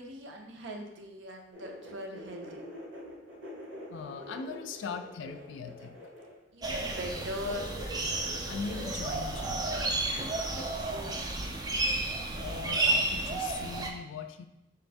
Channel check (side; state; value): both; normal; correlation 0.04